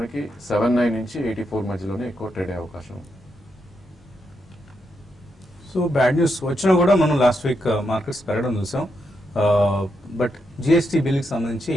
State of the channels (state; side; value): normal; both; correlation 0.82